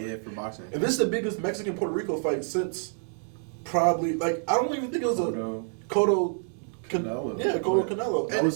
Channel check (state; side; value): silent; left; 60 dB below the other